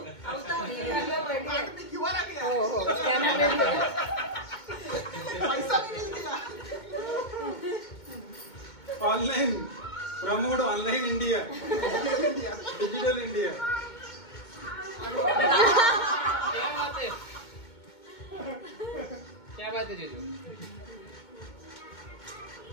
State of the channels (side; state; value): right; late; 2.2 ms